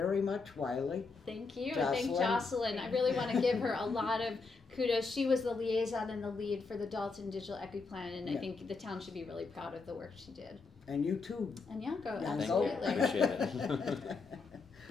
much, Wiley. Thank you. And thank Jocelyn. I really want to give her a lot of kudos. She was the liaison and the lead for the Dalton Digital Equity Plan, and I think the town should be really proud of the work she did. And you too. And Yanko, Yanko. absolutely. Appreciate it.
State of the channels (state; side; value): quieter; right; 4.3 dB